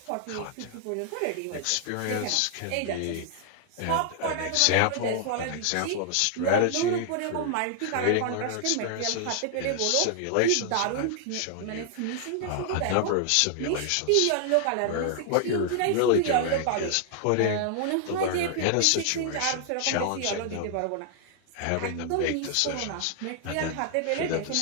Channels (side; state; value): both; different; correlation 0.00